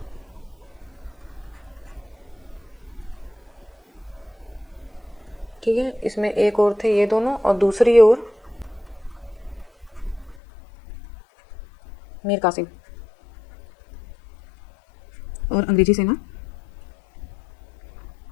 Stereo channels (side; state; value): right; drops out; at 10.4 s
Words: ठीक है। इसमें एक और थे ये दोनों और दूसरी ओर मीर कासिम। और अंग्रेजी सेना,